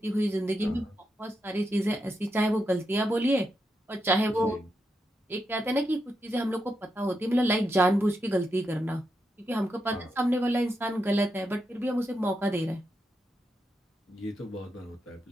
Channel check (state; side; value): normal; both; correlation 0.85